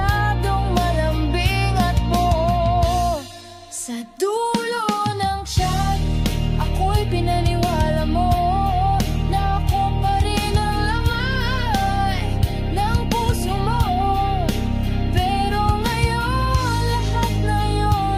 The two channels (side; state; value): both; identical; correlation 1.00